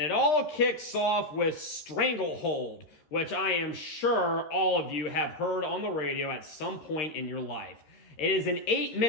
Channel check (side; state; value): right; late; 13 ms